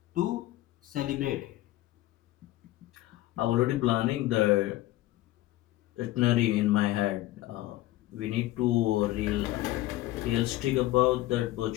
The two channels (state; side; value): quieter; right; 16.3 dB